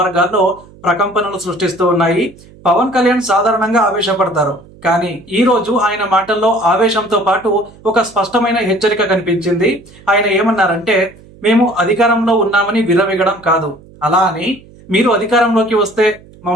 ప్రకంపనలు సృష్టిస్తూ ఉన్నాయి. పవన్ కళ్యాణ్ సాధారణంగా ఆవేశపడతారు, కానీ ఈ రోజు ఆయన మాటల్లో ఆవేశంతో పాటు ఒక స్పష్టమైన హెచ్చరిక కనిపించింది. ఆయన ఏమన్నారంటే, మేము అధికారంలో ఉన్నామని విర్రవీగడం కాదు, అలా అని మీరు అధికారంలోకి వస్తే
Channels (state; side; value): noise; right; hum, 24 dB below the sound